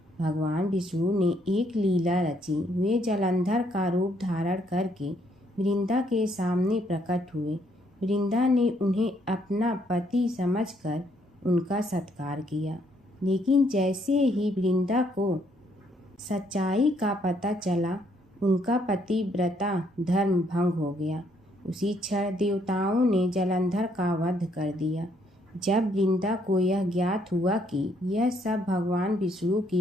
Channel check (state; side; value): normal; both; correlation 0.69